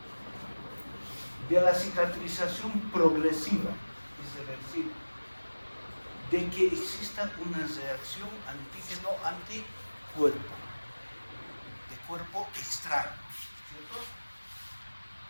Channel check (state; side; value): inverted; both; correlation -1.00